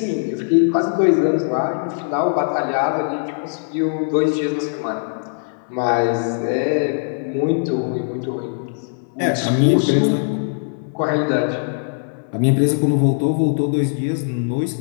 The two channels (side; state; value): right; silent; 58 dB below the other